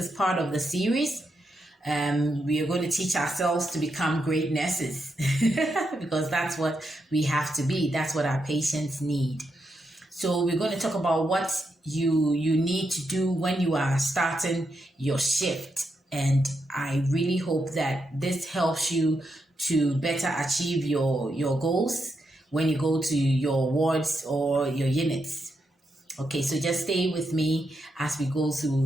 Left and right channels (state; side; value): normal; both; correlation 0.83